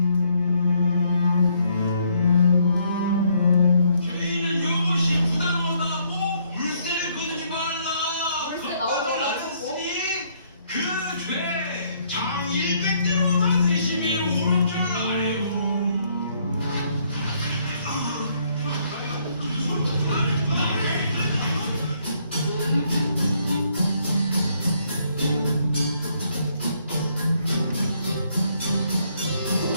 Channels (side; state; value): both; inverted; correlation -0.69